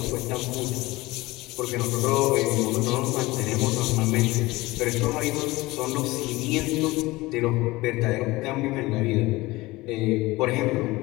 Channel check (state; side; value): quieter; right; 20.5 dB